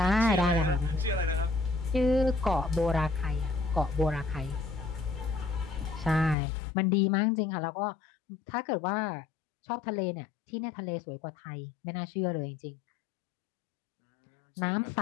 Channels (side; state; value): right; drops out; at 6.4 s